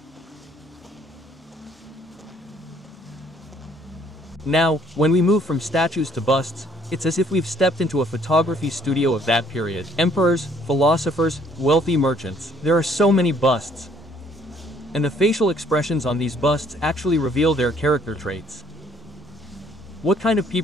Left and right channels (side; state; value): both; normal; correlation 0.62